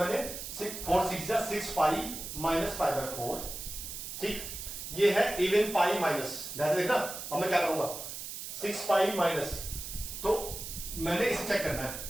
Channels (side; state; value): right; noise; hiss, 8 dB below the sound